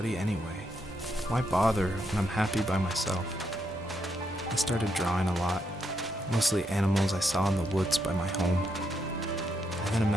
anyway? Why bother when I'm happy by myself? I started drawing a lot, mostly animals I saw in the woods by my home. I then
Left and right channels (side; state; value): both; normal; correlation 0.79